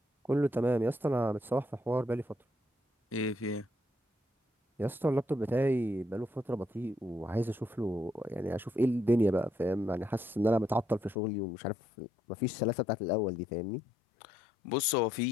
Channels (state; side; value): drops out; right; at 11.2 s